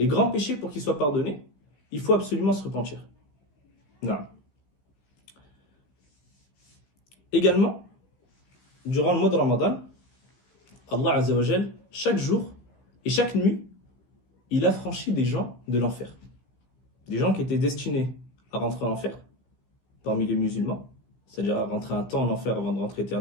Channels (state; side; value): late; right; 15 ms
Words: grands péchés, pour qu'ils soient pardonnés, il faut absolument se repentir. Non. Également, durant le mois de Ramadan, Allah Azza wa Jal, chaque jour et chaque nuit, il a franchi des gens de l'enfer. Des gens qui étaient destinés à rentrer en enfer, parmi les musulmans, c'est-à-dire à rentrer un temps en enfer avant de rentrer